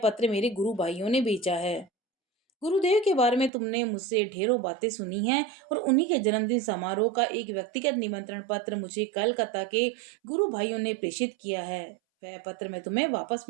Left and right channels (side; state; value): left; drops out; at 3.5 s